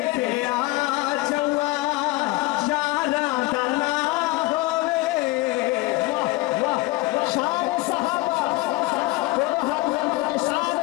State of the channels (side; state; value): right; quieter; 20.7 dB